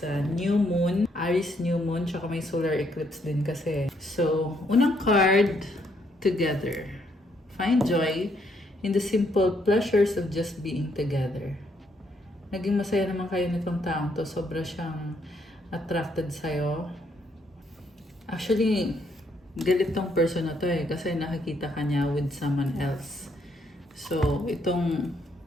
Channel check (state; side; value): normal; both; correlation 0.72